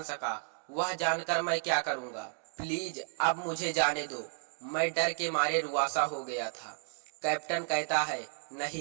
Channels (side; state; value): left; silent; digital silence